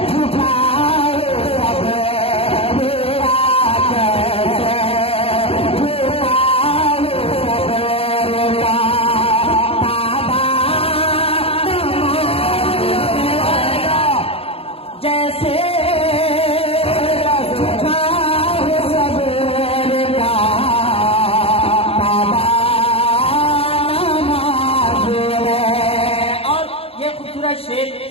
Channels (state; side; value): late; right; 0.28 ms